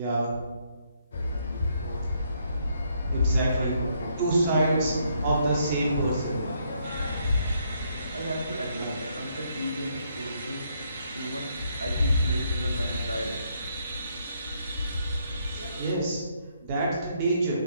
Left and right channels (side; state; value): both; inverted; correlation -0.73